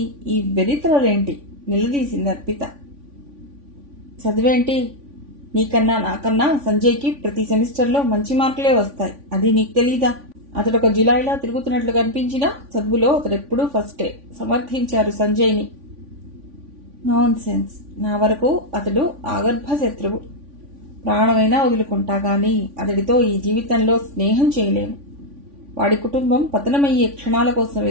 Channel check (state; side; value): late; left; 3.5 ms